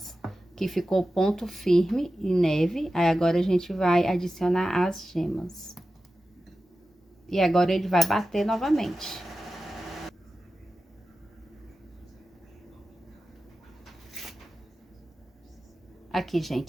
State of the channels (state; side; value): normal; both; correlation 0.93